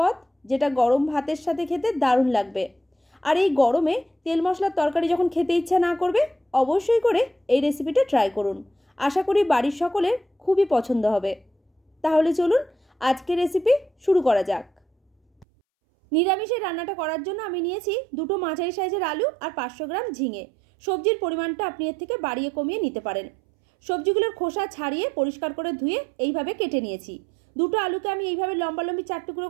যেটা গরম ভাতের সাথে খেতে দারুণ লাগবে। আর এই গরমে তেল মশলার তরকারি যখন খেতে ইচ্ছা না করবে, অবশ্যই করে এই রেসিপিটা ট্রাই করুন। আশা করি বাড়ির সকলের খুবই পছন্দ হবে। তাহলে চলুন আজকের রেসিপি শুরু করা যাক। নিরামিষের রান্নাটা করার জন্য আমি নিয়েছি দুটো মাঝারি সাইজের আলু আর 500 গ্রাম ঝিঙে। সবজির পরিমাণটা আপনি এর থেকে বাড়িয়ে কমিয়ে নিতে পারেন। সবজিগুলোর খোসা ছাড়িয়ে পরিষ্কার করে ধুয়ে এইভাবে কেটে নিয়েছি। দুটো আলুকে আমি এইভাবে লম্বালম্বি 4 টুকরো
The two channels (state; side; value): drops out; left; at 15.5 s